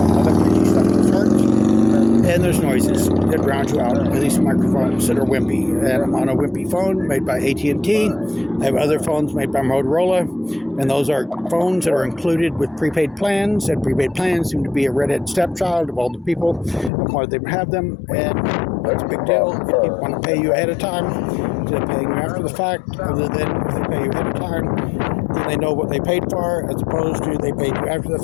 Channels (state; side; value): drops out; right; at 16.9 s